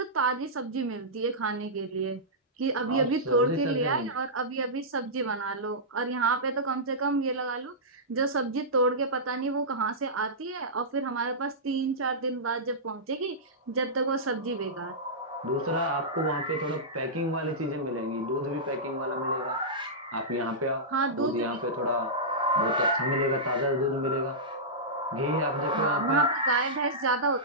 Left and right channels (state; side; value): normal; both; correlation -0.15